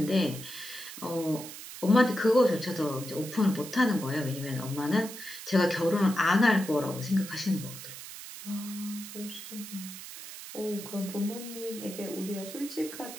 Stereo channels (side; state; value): right; noise; hiss, 12 dB below the sound